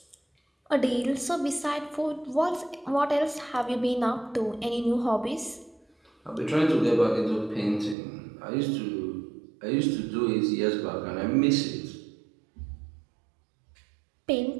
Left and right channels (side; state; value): left; drops out; at 8.0 s